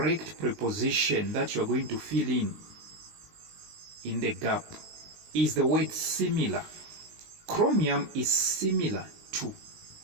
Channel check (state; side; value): late; left; 19 ms